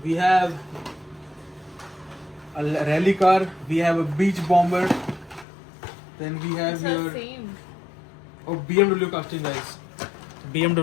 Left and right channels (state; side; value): drops out; right; at 5.5 s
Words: We have a rally car. We have a beach bomber. Then we have this is. It's here the same. oh BMW casting, guys.